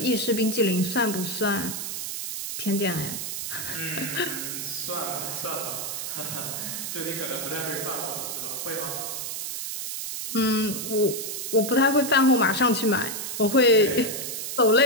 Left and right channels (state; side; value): noise; right; hiss, 5 dB below the sound